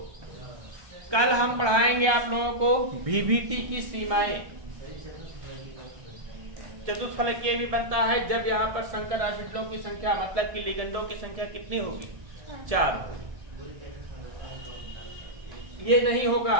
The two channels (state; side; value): late; left; 1.3 ms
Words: कल हम पढ़ाएंगे आप लोगों को VVT की सीमाएं। चतुष्फलकीय भी बनता है जब यहाँ पर संकर ऑर्बिटलों की संख्या, मतलब कि लिगेंडों की संख्या कितनी होगी? 4। ये नहीं होगा।